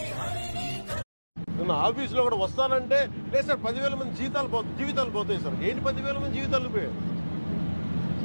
ఆఫీసులో కూడా వస్తానంటే లేదు సార్ 10,000 మంది జీవితాలు పోతాయి సార్. ఏంటి 10,000 మంది జీవితాలు పోయాయి?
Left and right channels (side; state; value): both; inverted; correlation -1.00